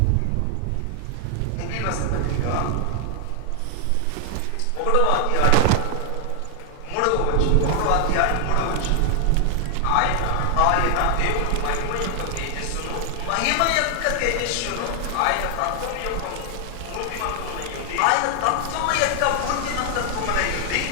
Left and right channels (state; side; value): different; both; correlation 0.00